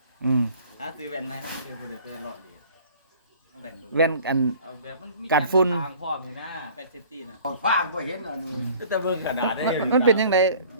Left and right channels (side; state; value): both; inverted; correlation -0.50